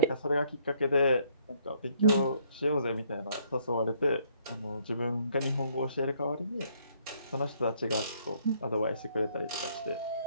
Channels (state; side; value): inverted; both; correlation -0.66